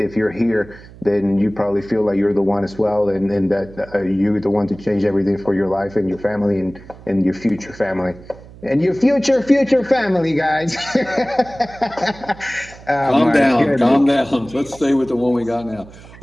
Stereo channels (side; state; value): right; noise; hum, 20 dB below the sound